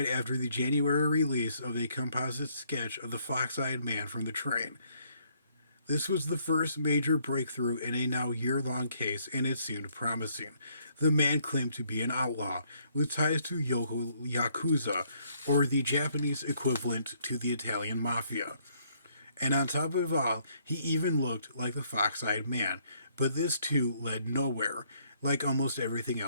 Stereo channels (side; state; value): both; inverted; correlation -0.68